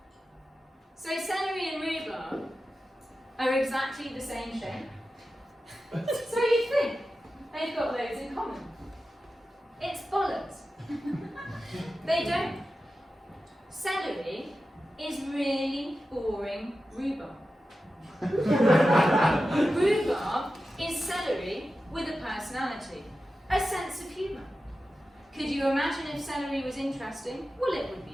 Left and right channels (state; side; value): normal; both; correlation 0.92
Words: So celery and rhubarb are exactly the same shape. So you'd think they've got loads in common. It's bollocks. They don't. Celery is really boring rhubarb. Rhubarb is celery with a personality, a sense of humour. Could you imagine if celery was interesting? Well, it would